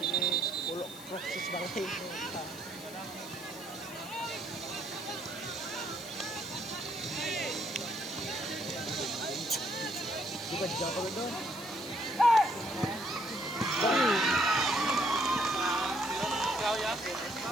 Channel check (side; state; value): left; noise; hiss, 16 dB below the sound